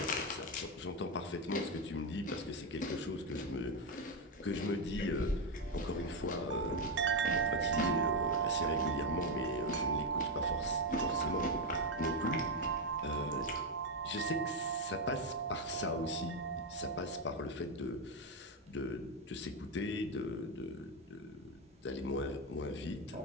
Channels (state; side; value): normal; both; correlation 0.07